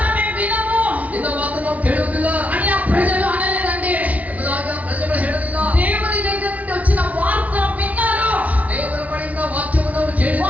మేము వినము. ನಿನ್ನ ಮಾತು ನಾವು ಕೇಳುವುದಿಲ್ಲ అని ఆ ప్రజలు అనలేదండి. ಎಂಬುದಾಗಿ ಪ್ರಜೆಗಳು ಹೇಳಲಿಲ್ಲ. దేవుని దగ్గర నుండి వచ్చిన వార్త విన్నారు. ದೇವರ ಬಳಿಯಿಂದ ವಾಕ್ಯವನ್ನು ಅವರು ಕೇಳಿದರು.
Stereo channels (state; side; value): late; left; 0.070 ms